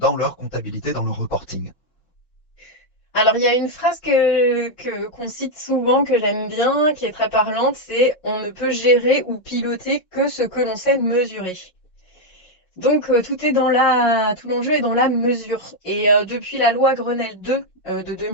leur comptabilité, dans leur reporting? Alors, il y a une phrase qu'on cite souvent, que j'aime bien, qui est très parlante, c'est on ne peut gérer ou piloter que ce que l'on sait mesurer. Donc, tout l'enjeu est dans la mesure. Et depuis la loi Grenelle 2 de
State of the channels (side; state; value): right; late; 5.5 ms